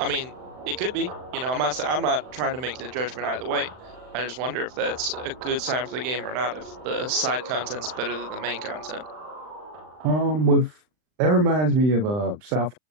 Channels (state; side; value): late; left; 39 ms